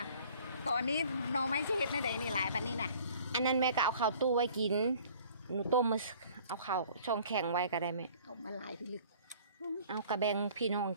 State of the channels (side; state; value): both; inverted; correlation -0.52